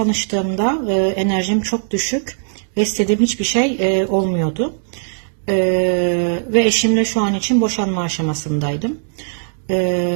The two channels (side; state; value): left; silent; digital silence